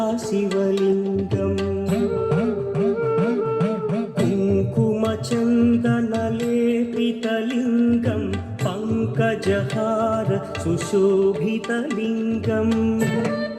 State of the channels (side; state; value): both; identical; correlation 1.00